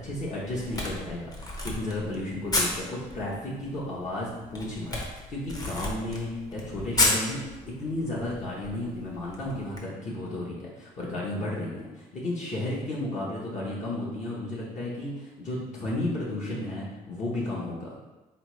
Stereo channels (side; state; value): both; normal; correlation 0.40